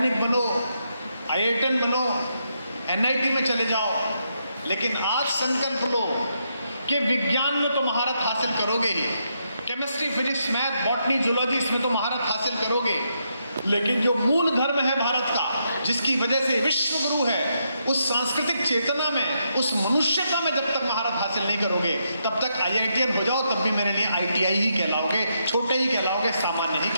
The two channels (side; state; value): both; inverted; correlation -0.80